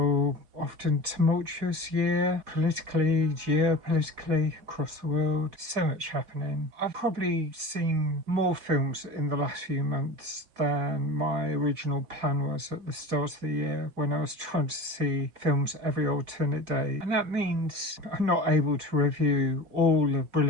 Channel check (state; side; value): late; left; 4.6 ms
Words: often tumultuous year, politically, geopolitically, across the world. So much happening. I've probably seen more films in the last few months than my original plan was at the start of the year when I was trying to see films every alternate day, and that means I'm not able to review all the